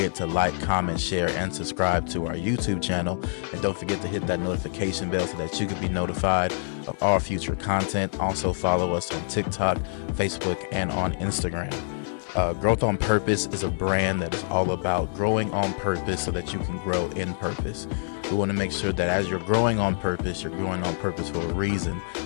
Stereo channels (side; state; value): right; silent; 61 dB below the other